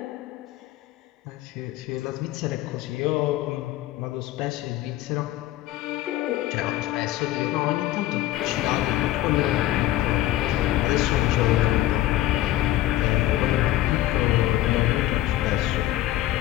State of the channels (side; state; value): right; quieter; 14.8 dB